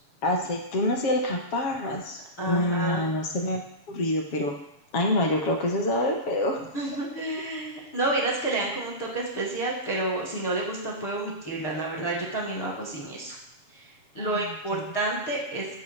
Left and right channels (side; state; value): right; late; 7.2 ms